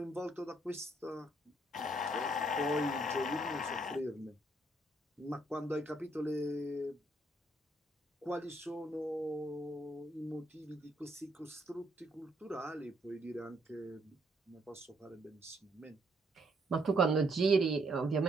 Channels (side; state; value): both; normal; correlation 0.71